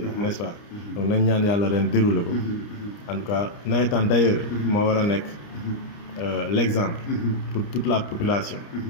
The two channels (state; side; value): late; right; 29 ms